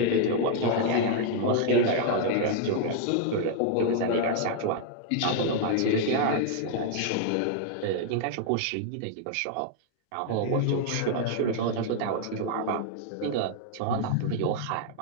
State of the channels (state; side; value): different; both; correlation 0.00